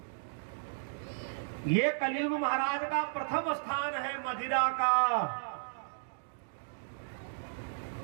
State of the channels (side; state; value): left; silent; digital silence